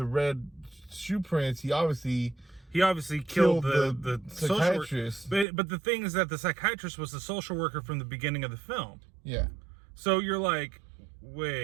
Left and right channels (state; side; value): drops out; left; at 5.5 s